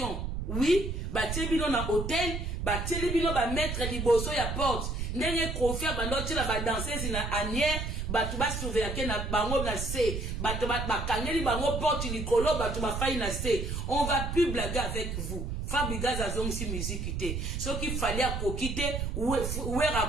oui ba tebino na hôtel ba telebino ba mettre liboso ya porte ndenge confia ba ndoti la ba danseuse na anière batu ba surveiller na bango na C batu ba kangeli bango porte likolo batu ba faille na C on va plus blaguer avec vous Fabregas azongisi musique te soki fallait à kokite Wera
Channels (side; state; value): right; noise; rumble, 3 dB below the sound